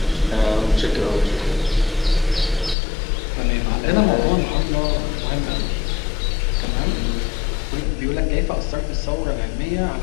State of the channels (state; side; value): drops out; right; at 2.8 s